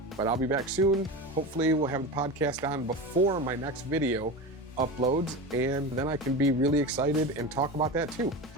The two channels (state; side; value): normal; both; correlation 0.25